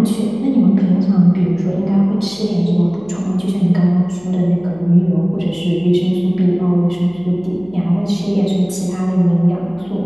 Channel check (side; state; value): left; noise; hum, 25 dB below the sound